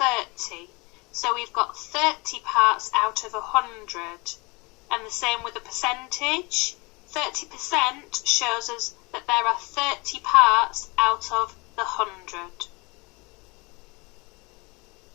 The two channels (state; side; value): quieter; right; 26.9 dB